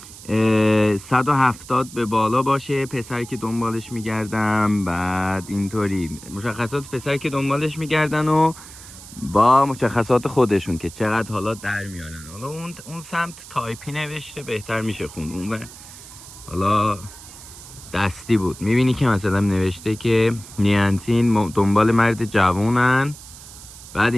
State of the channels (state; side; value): noise; right; hiss, 17 dB below the sound